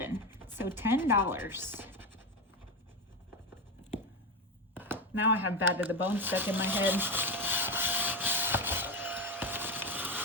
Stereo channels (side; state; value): both; normal; correlation 0.15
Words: So $10. Now I have Bad to the Bone stuck in my head.